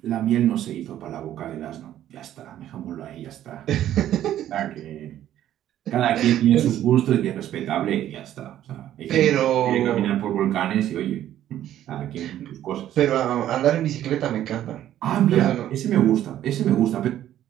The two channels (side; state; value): left; quieter; 12.0 dB